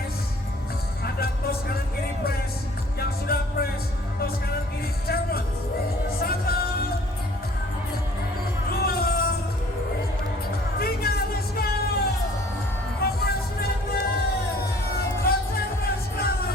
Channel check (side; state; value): both; normal; correlation 0.54